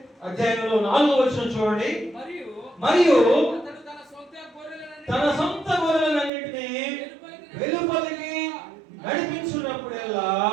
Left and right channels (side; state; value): left; drops out; at 6.3 s